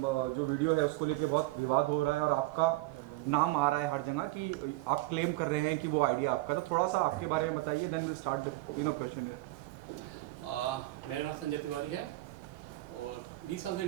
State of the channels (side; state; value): left; quieter; 19.8 dB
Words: जो वीडियो है उसको लेके बहुत विवाद हो रहा है और आपका नाम आ रहा है हर जगह कि आप क्लेम कर रहे हैं कि वो आइडिया आपका। तो थोड़ा सा आपके बारे में बताइए, देन विल स्टार्ट क्वेश्चन। मेरा नाम संजय तिवारी है और 20 साल से